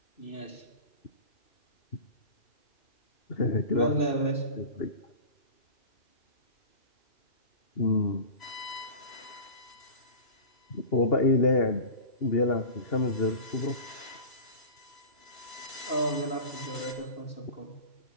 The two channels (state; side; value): late; right; 3.0 ms